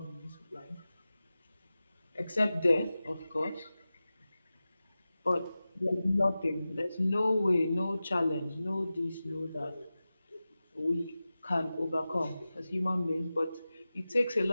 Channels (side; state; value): both; inverted; correlation -0.95